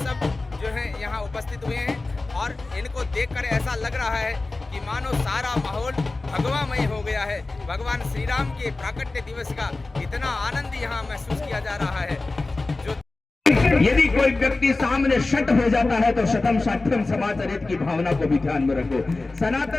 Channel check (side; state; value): right; quieter; 3.3 dB